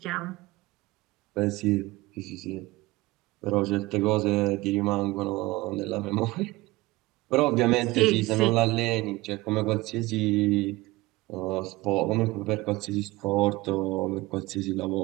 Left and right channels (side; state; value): left; quieter; 20.6 dB